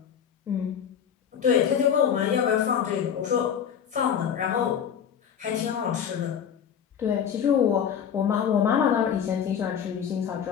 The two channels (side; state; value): right; quieter; 8.2 dB